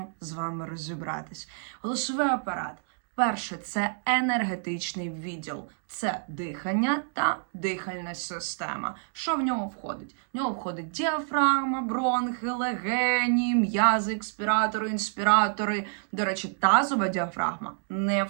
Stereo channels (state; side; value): silent; left; digital silence